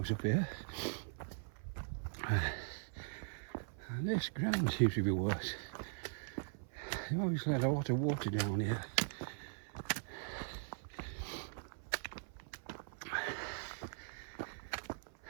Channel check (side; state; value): left; silent; 51 dB below the other